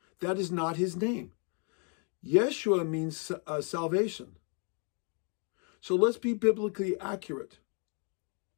That is not his name. Yeshua means salvation. So let's be biblically accurate.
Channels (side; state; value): right; quieter; 38.7 dB